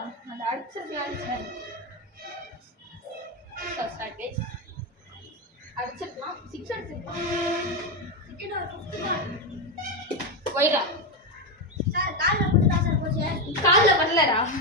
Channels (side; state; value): both; normal; correlation 0.09